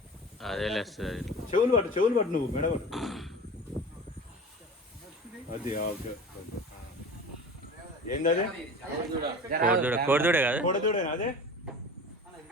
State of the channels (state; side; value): normal; both; correlation 0.37